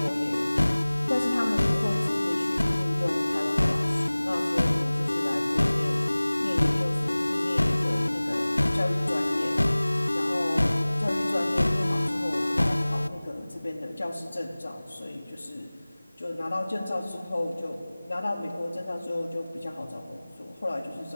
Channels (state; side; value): inverted; both; correlation -0.99